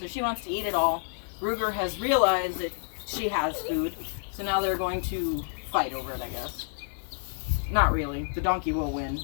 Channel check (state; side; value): silent; right; digital silence